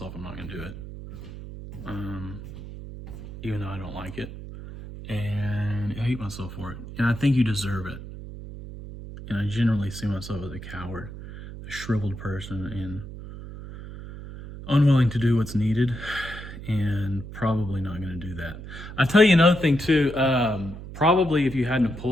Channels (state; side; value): noise; right; hum, 12 dB below the sound